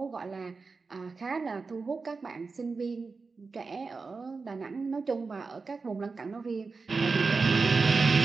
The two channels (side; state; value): left; quieter; 4.4 dB